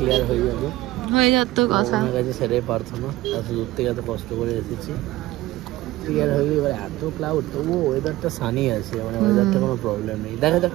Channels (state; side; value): quieter; left; 17.4 dB